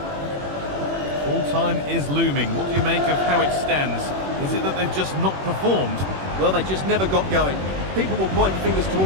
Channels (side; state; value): left; late; 21 ms